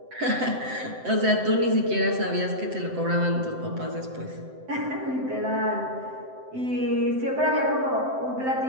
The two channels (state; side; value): late; left; 7.8 ms